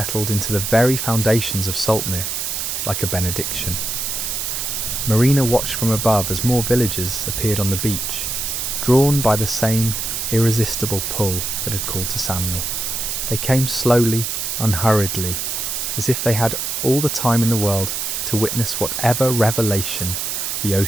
into the very foundations of Saltmere, like a benediction. Marina watched from above as more villagers appeared on the beach, drawn by the same irresistible pull that had called to Samuel. They came slowly, unhurriedly, as if they had all the time in the world to witness whatever revelation the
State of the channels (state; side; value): noise; right; hiss, 2 dB below the sound